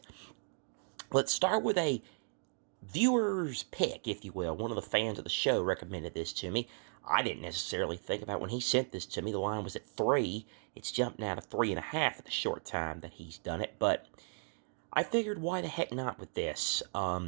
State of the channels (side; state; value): left; silent; 54 dB below the other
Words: Let's start with a viewer's pick, if you will. One of the fans of the show recommended this to me. I didn't necessarily think about when he sent this to me. The line was at 3. It's jumped now to 3.5 in the short time that he's done it. But I figured, why the heck not with this?